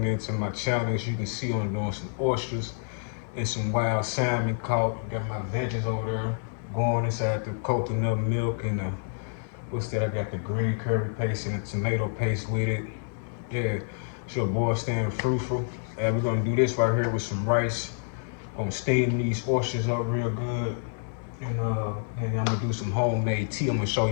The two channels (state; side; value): silent; right; 59 dB below the other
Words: in to my channel. As you can see, I'm doing some oysters and some wild salmon caught. Got my veggies over there going inside the coconut milk and what's that? I got the green curry paste and the tomato paste with it. Yeah, it's your boy staying fruitful. And we're gonna do this right here with some rice. Gonna steam these oysters up real good. And I'm gonna do some homemade tea. I'm gonna show